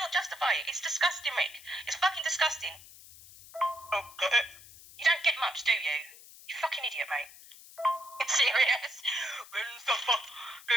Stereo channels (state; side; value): noise; left; hiss, 19 dB below the sound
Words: justify it. It's disgusting, Rick. It's fucking disgusting. Oh, got it. You don't get much, do you? You fucking idiot, mate. It's serious. Go and suffer.